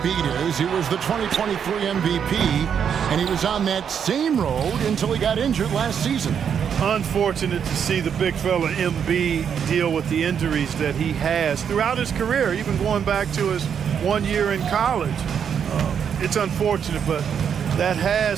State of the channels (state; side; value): quieter; left; 7.8 dB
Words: is. He was the 2023 MVP, and he was on that same road until he got injured last season. Unfortunate to see the big fella Embiid deal with the injuries that he has throughout his career, even going back to his 1 year in college. It's unfortunate, but that